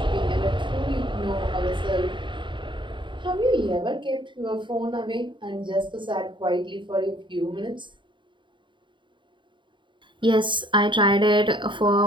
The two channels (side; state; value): left; late; 0.23 ms